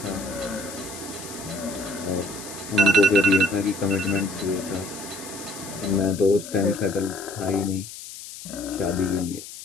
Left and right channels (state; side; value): noise; left; hiss, 13 dB below the sound